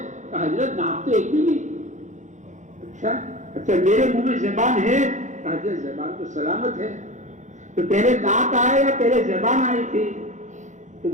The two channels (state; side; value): late; left; 0.35 ms